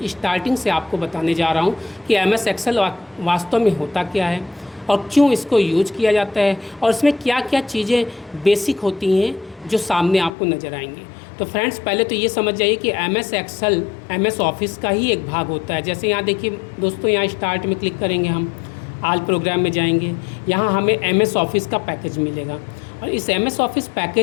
स्टार्टिंग से आपको बताने जा रहा हूँ कि एमएस एक्सेल वास्तव में होता क्या है और क्यों इसको यूज किया जाता है और इसमें क्या क्या चीज़ें बेसिक होती हैं जो सामने आपको नज़र आएंगे। तो फ्रेंड्स, पहले तो ये समझ जाइए कि एमएस एक्सेल एमएस ऑफिस का ही एक भाग होता है। जैसे यहाँ देखिए दोस्तों, यहाँ स्टार्ट में क्लिक करेंगे, हम आल प्रोग्राम में जाएंगे, यहाँ हमें एमएस ऑफिस का पैकेज मिलेगा और इस एमएस ऑफिस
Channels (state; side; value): drops out; right; at 10.3 s